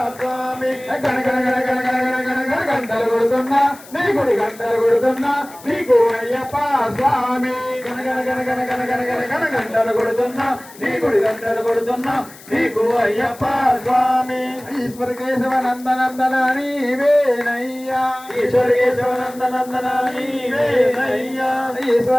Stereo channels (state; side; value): noise; left; hiss, 21 dB below the sound